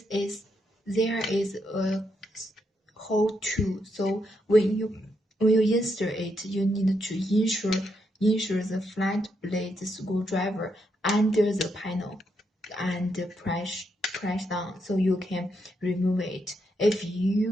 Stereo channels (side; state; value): both; normal; correlation 0.80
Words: there is a hole too. So when you insert it, you need to insert the flat blade screwdriver under the panel and press down so you can remove it. If